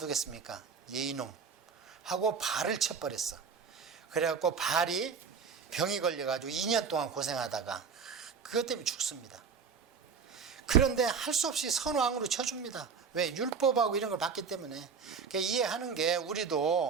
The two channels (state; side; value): quieter; left; 5.8 dB